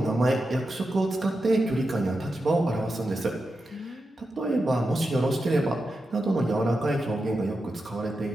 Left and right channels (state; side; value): normal; both; correlation 0.89